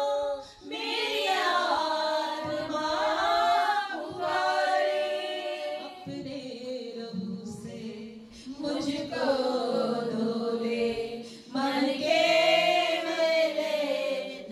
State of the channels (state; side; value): identical; both; correlation 1.00